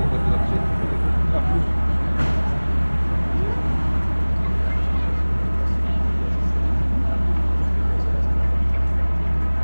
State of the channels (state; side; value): inverted; both; correlation -1.00